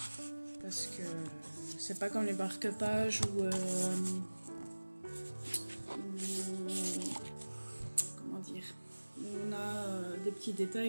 c'est pas comme les marque-pages ou comment dire, on a des petits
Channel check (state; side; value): inverted; both; correlation -1.00